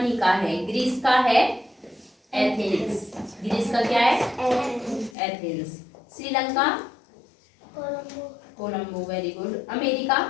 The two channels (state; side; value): drops out; right; at 5.2 s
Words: का है, ग्रीस का है एथेंस, ग्रीस का क्या है Athens, Sri Lanka Colombo, Colombo, very good, America